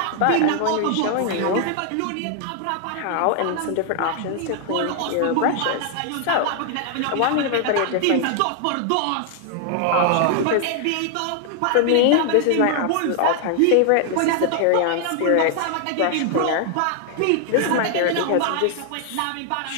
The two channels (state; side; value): different; both; correlation 0.00